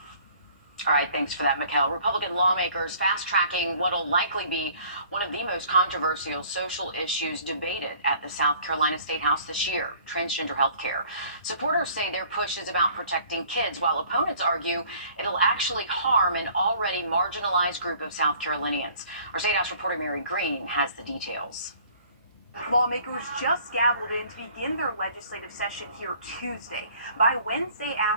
All right, thanks for that, Mikkel. Republican lawmakers fast-tracking what'll likely be one of the most controversial social issues debated at the South Carolina State House this year, transgender health care. Supporters say their push is about protecting kids, while opponents argue it'll actually harm an already marginalized group of South Carolinians. Our State House reporter Mary Green has the details. Lawmakers just gavelled in to begin their legislative session here Tuesday. By Wednesday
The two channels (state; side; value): inverted; both; correlation -0.54